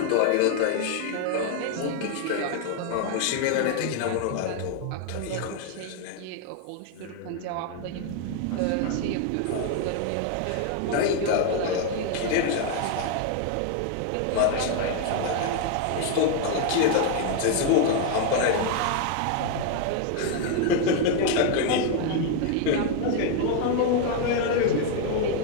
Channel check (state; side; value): different; both; correlation 0.00